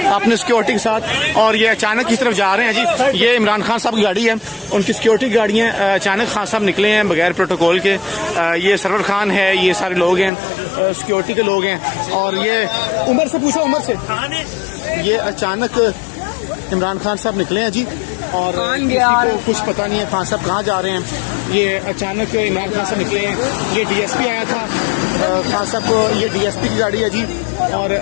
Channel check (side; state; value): right; drops out; at 10.3 s